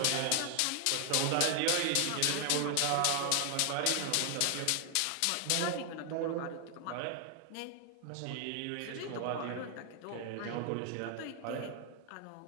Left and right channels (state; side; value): different; both; correlation 0.00